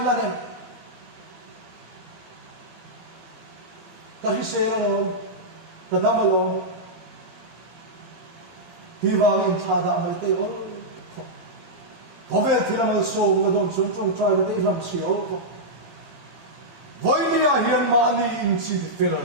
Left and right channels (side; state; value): left; late; 17 ms